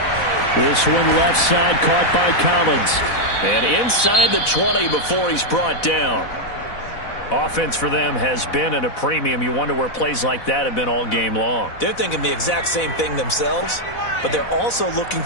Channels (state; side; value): late; right; 4.0 ms